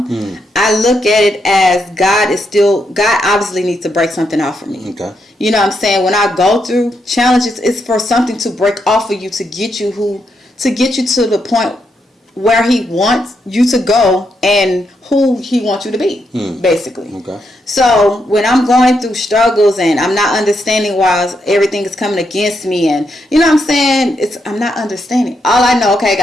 I look at it as God obviously needs to break something off of me. Okay. You know what I'm saying? When I go through challenges, it's for something to break off of you to get you to the point where He wants you to go and who He wants you to be, basically. Okay. So when I'm going through struggles and I'm not understanding why everything is coming against me, and you know what I'm saying, I'm not understanding. All I know, okay,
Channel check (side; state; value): both; normal; correlation 0.80